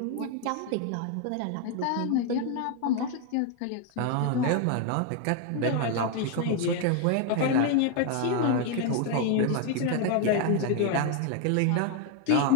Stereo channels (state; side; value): different; both; correlation 0.01